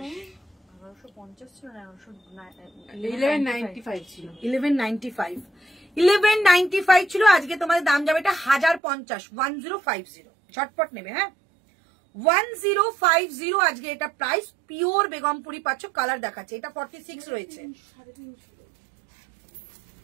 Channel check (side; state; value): left; drops out; at 8.8 s